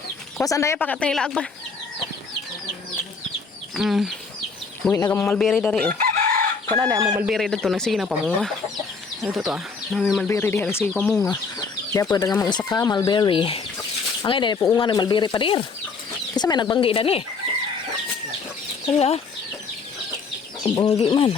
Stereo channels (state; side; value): quieter; right; 4.7 dB